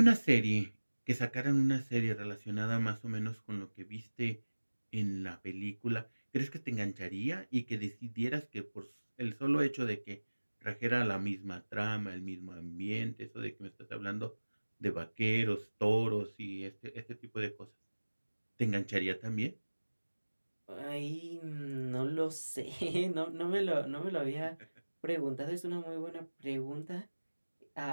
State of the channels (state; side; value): inverted; both; correlation -1.00